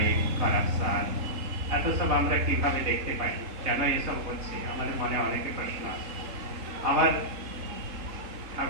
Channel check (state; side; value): late; left; 3.7 ms